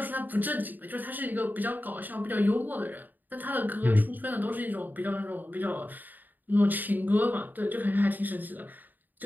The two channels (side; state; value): left; late; 0.087 ms